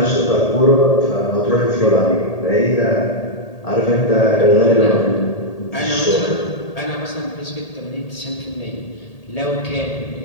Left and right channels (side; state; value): right; late; 1.8 ms